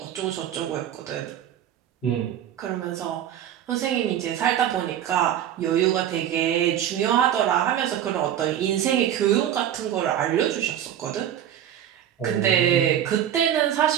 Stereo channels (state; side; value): quieter; left; 10.6 dB